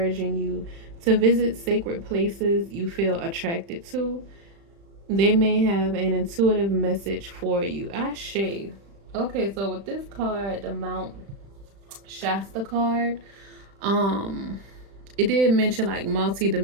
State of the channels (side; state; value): left; late; 35 ms